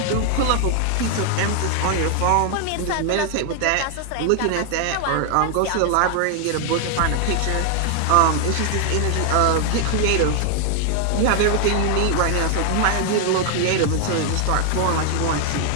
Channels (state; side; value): different; both; correlation 0.00